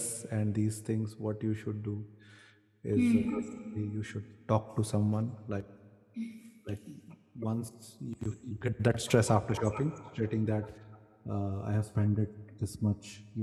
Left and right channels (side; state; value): both; identical; correlation 1.00